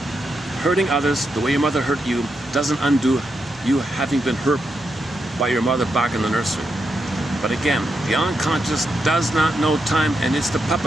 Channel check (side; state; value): both; normal; correlation 0.84